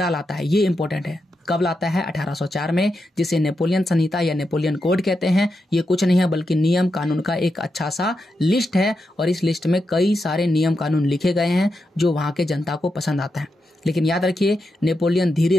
लाता है, ये इंपॉर्टेंट है। कब लाता है? 1804 में, जिसे नेपोलियन संहिता या नेपोलियन कोड कहते हैं। ये कुछ नहीं है बल्कि नियम कानून का एक अच्छा सा लिस्ट है, और इस लिस्ट में कई सारे नियम कानून लिखे गए हैं जो वहां के जनता को पसंद आता है। लेकिन याद रखिए, नेपोलियन धीरे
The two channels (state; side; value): normal; both; correlation 0.86